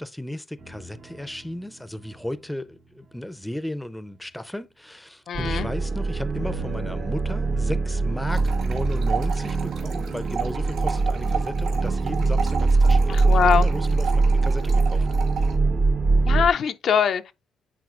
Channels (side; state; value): both; normal; correlation 0.88